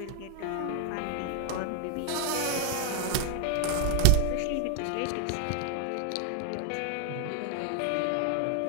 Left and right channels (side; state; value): both; different; correlation 0.00